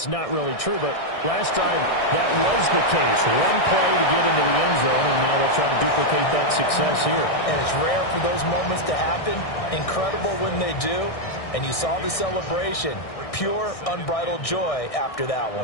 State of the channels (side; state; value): right; late; 1.6 ms